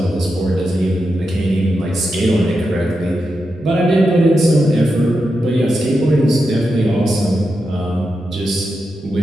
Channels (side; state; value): both; normal; correlation 0.88